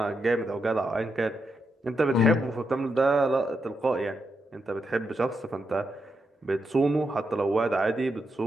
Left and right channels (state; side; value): normal; both; correlation 0.83